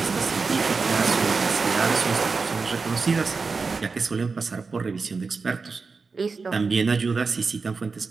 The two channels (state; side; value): quieter; left; 4.6 dB